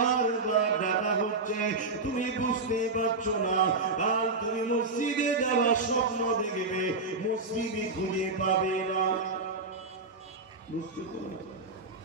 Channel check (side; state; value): left; quieter; 3.6 dB